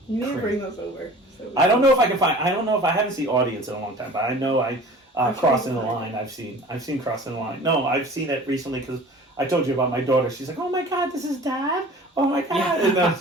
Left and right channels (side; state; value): both; normal; correlation 0.43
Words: need to bring those over. I don't know if I can find. I don't know if I haven't seen audience in a long time, but I know I Crossing the Line. I've seen Crossing the Line. No, I've seen it recently because I told you about my daughter. She's like, oh my God, this is Dad. Oh my God. Yeah. And